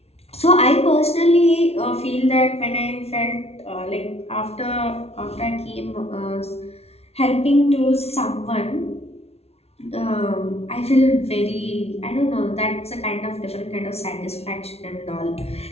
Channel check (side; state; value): right; late; 0.30 ms